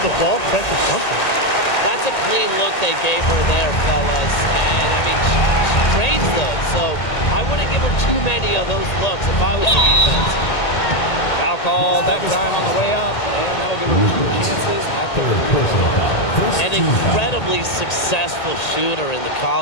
the ball, pressure something. That's a clean look they gave her there, fellas. And, I mean, she drains those. So I wouldn't give her too many of those looks if I was the defense. Foul called that time on the way up, and that'll give her 2 chances at the An incredibly successful shooter in the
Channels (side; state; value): right; late; 1.8 ms